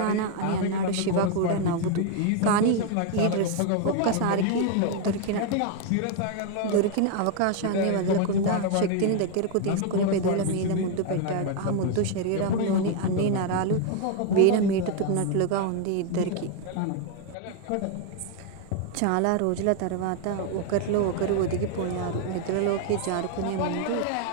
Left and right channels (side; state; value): both; different; correlation 0.01